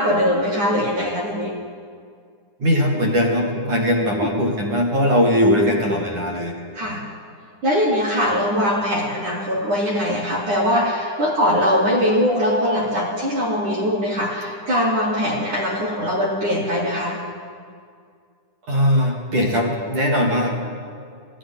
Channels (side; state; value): left; late; 9.8 ms